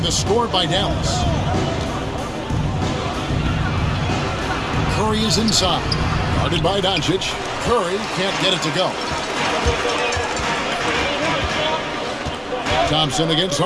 the score by Dallas. Curry is inside. Guarded by Doncic. Curry can't get it to go. Thompson against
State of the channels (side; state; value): both; identical; correlation 1.00